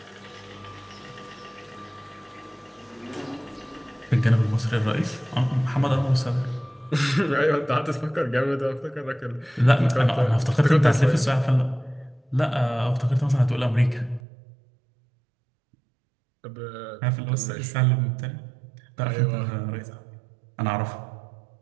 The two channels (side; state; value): left; drops out; at 14.2 s